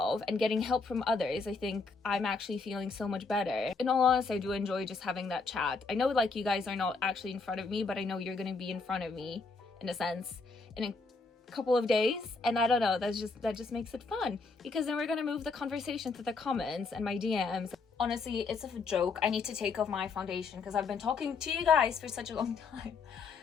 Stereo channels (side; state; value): right; quieter; 4.4 dB